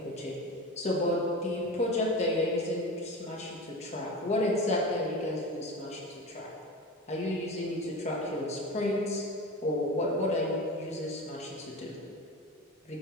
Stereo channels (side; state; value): both; normal; correlation 0.28